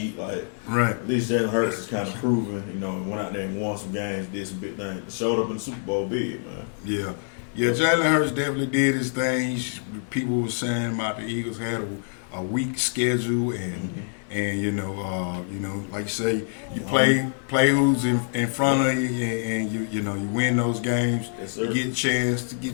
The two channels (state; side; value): silent; right; 61 dB below the other